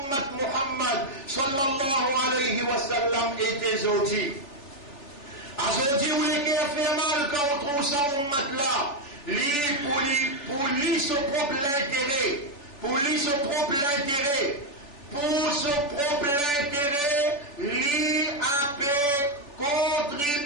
Muhammad sallallahu alayhi wa sallam était aujourd'hui. Aujourd'hui, où les cœurs fait mal quand on trouve ça Ummat là, pour lui son propre intérêt, pour lui son propre intérêt, lui a pu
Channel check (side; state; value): right; late; 3.4 ms